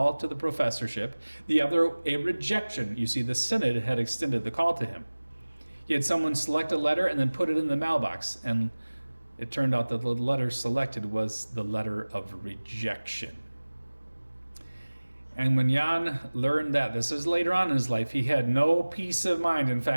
to the professorship, the other a rejection. You see, the synod had extended the call to him. He had someone select a letter and then put it in the mailbox, and it turned out that the letter selected was the letter of rejection. And when Jan learned that, this is later on in his life, he had no peace of mind. In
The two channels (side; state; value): both; inverted; correlation -1.00